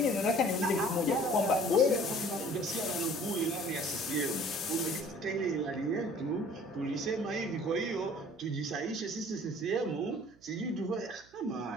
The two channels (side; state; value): right; noise; hum, 28 dB below the sound